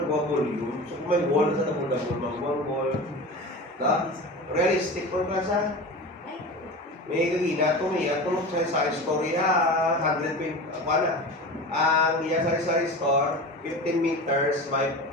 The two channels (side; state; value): both; normal; correlation 0.31